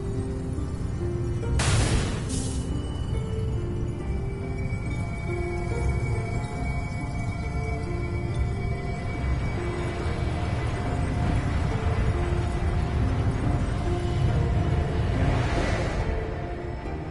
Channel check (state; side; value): identical; both; correlation 1.00